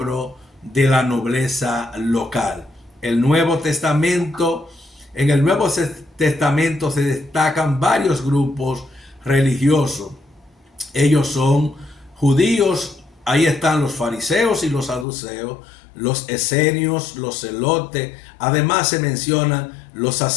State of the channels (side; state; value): right; drops out; at 15.1 s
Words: de la nobleza local. En el Nuevo Testamento se destacan varios grupos religiosos. Ellos son judíos, ahí están los fariseos y los saduceos, los esenios, los celotes. Además se mencionan los